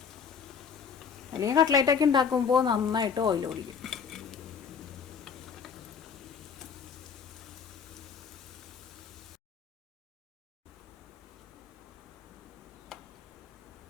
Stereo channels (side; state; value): right; quieter; 6.5 dB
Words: അല്ലെങ്കിൽ കട്ട്ലേറ്റൊക്കെ ഉണ്ടാക്കുമ്പോൾ നന്നായിട്ട് ഓയിൽ കുടിക്കും.